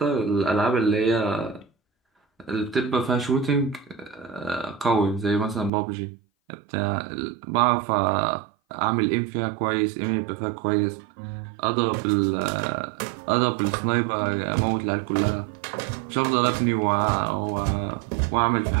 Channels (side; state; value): left; drops out; at 5.7 s